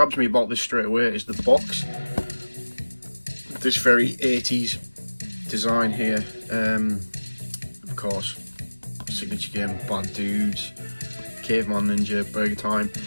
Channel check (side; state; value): both; inverted; correlation -1.00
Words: me about this straight away is the box. This very 80s design here. Of course, signature game, Bad Dudes, Caveman Ninja, Burger Time.